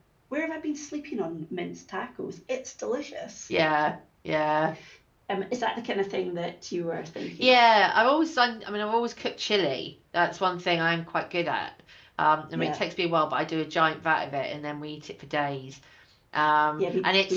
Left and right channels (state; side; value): identical; both; correlation 1.00